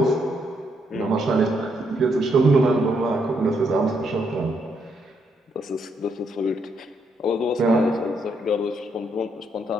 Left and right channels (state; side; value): normal; both; correlation 0.76